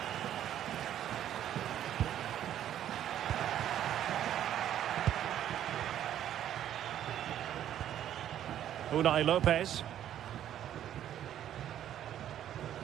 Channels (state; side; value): quieter; left; 11.0 dB